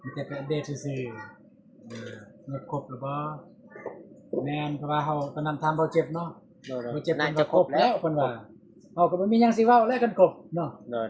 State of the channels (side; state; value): both; identical; correlation 1.00